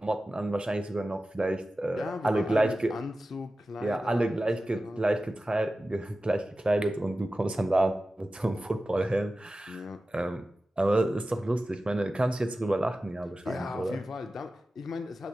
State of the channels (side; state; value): both; normal; correlation 0.94